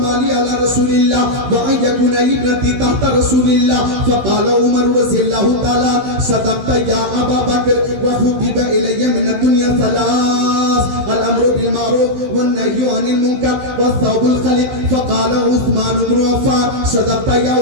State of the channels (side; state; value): left; late; 15 ms